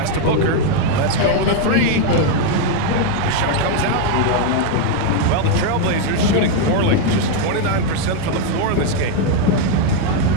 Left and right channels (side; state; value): both; different; correlation 0.01